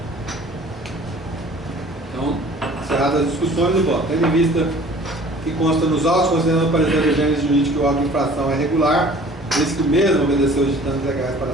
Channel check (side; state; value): both; normal; correlation 0.49